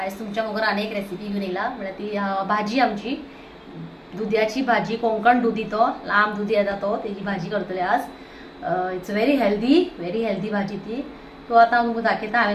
तुमच्या मुखार अनेक रेसिपी घेवन येयला। म्हणजे ती भाजी आमची दुदयाची भाजी, कोंकण दुदी, तो लांब दुदी येता तो, तेजी भाजी करतले आज। इट्स व्हेरी हेल्दी भाजी ती। तो आता तुमकां दाखयता।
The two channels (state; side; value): identical; both; correlation 1.00